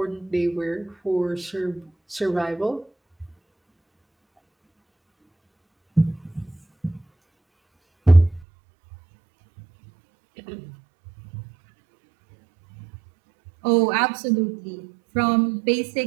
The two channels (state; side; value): drops out; left; at 8.5 s